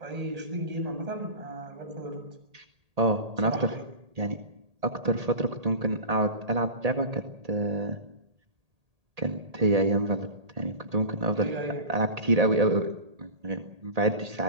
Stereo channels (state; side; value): late; left; 1.8 ms